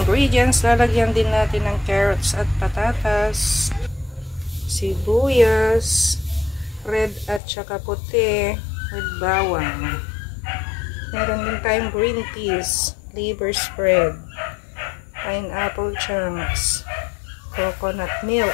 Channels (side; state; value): right; drops out; at 7.4 s